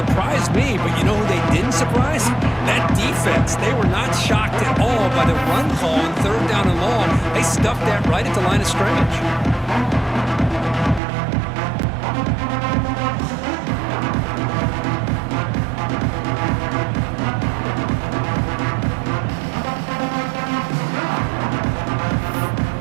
me, but you know who they didn't surprise? That defense. They were not shocked at all by the run call on third down and long. They stuffed that right at the line of scrimmage.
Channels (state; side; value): drops out; left; at 11.0 s